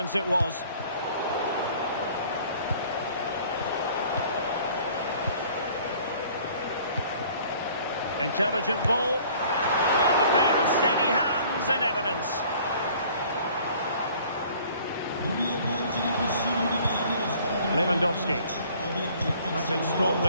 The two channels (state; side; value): inverted; both; correlation -0.53